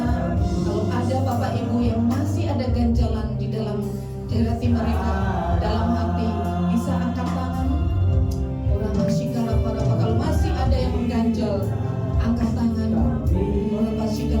kalau ada Bapak Ibu yang masih ada ganjalan di dalam hati mereka, dalam hati, bisa angkat tangan. Orang masih kalau masih ada yang mengganjal, angkat tangan. Orang masih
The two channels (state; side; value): identical; both; correlation 1.00